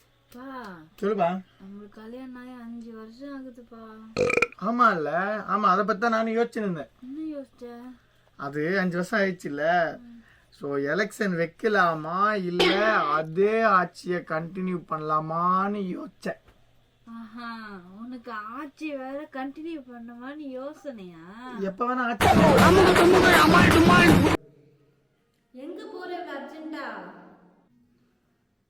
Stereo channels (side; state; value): both; identical; correlation 1.00